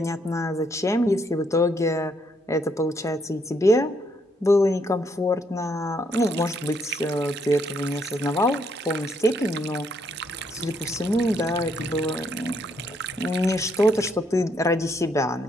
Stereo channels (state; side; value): normal; both; correlation 0.72